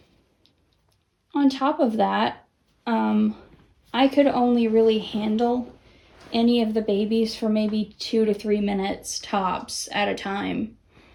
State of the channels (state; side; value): identical; both; correlation 1.00